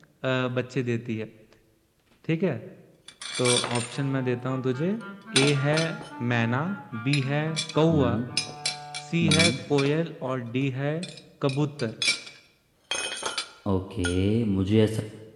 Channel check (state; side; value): identical; both; correlation 1.00